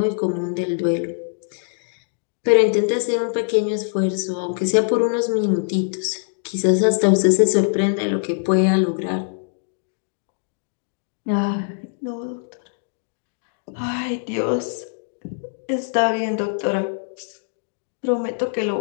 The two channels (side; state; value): right; silent; digital silence